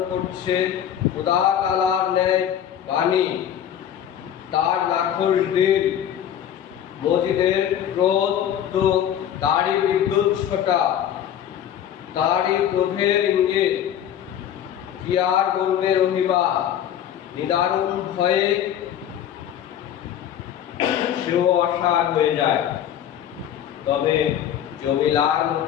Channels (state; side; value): quieter; right; 10.0 dB